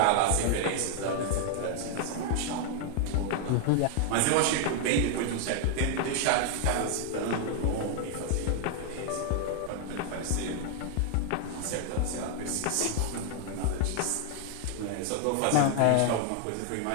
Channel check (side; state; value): both; different; correlation 0.00